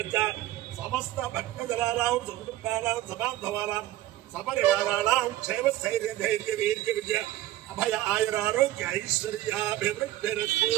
చ సమస్త భక్తజలానాం సుకుటుంబానాం సమాధవానాం సపరివారాణాం క్షేమ స్థైర్య ధైర్య వీర్య విజయ అభయ ఆయురారోగ్య ఐశ్వర్యాభివృద్ధిరస్తు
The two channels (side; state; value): left; quieter; 15.0 dB